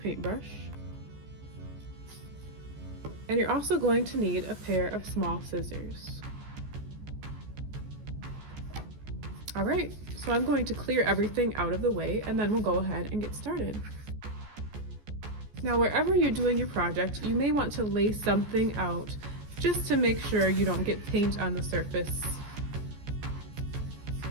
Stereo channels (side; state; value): left; late; 14 ms